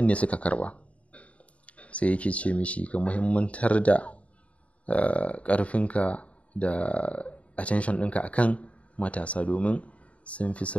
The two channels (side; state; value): right; late; 0.065 ms